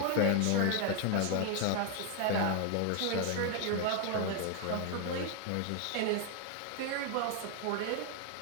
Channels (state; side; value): different; both; correlation 0.00